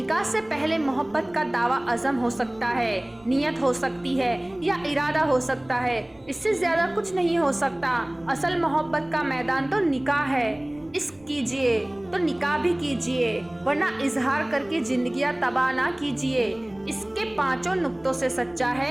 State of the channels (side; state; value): right; noise; rumble, 30 dB below the sound